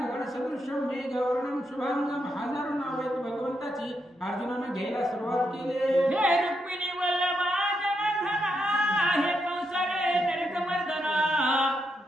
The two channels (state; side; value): normal; both; correlation 0.81